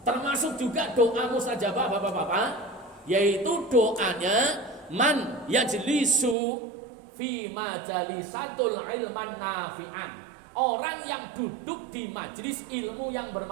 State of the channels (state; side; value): drops out; left; at 6.4 s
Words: Termasuk juga doa mustajabah Bapak-bapak, yaitu doanya man yajlisu fi majalisatul ilman nafi'an. orang yang duduk di majelis ilmu yang